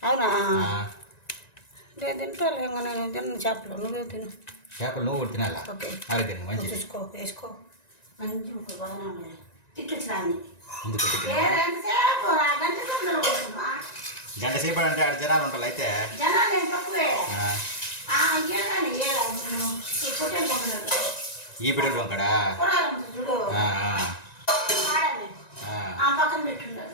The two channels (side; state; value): right; late; 1.9 ms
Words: అవునా? నేను తింటాలే, ఇంకా నేను తిన్న చేపలు నువ్వే తిను. చేపలు నువ్వు కూడా తినాలా? ఓకే ఆరోగ్యం మంచి చూసుకో, వేసుకో. మంచి బాగానే ఉన్నాయి. తిట్టించినాన్ని ఎందుకు గంట సేపు అంటే ఆడ జనాలు ఉంటారు. అయితే జనాలు ఏం తక్కువే. ఈ పిల్లలు పంకడా చూడు పక్కన పెట్టున్నారు.